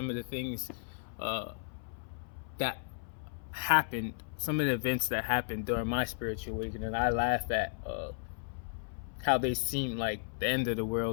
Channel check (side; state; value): right; silent; 55 dB below the other